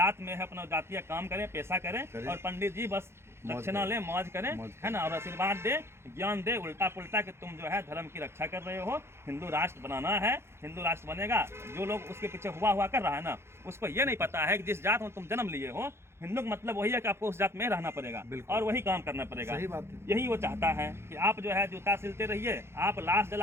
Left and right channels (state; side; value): late; left; 0.12 ms